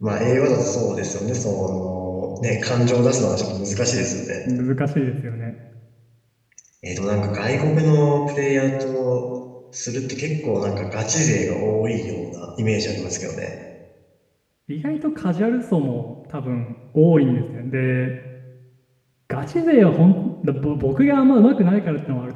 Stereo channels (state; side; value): identical; both; correlation 1.00